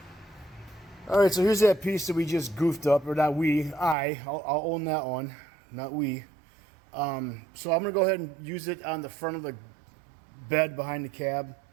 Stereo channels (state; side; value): drops out; left; at 4.0 s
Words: All right, so here's that piece that we just goofed up, or not we. I'll own that one, not we. So I'm gonna go ahead and use it on the front of the bed behind the cab